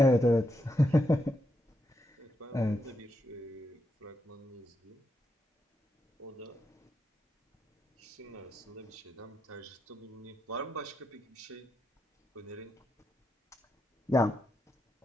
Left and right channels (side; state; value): both; normal; correlation 0.83